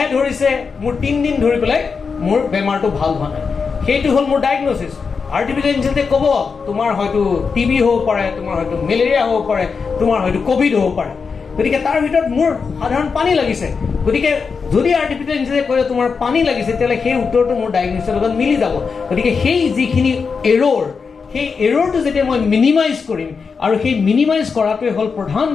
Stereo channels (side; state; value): right; quieter; 5.3 dB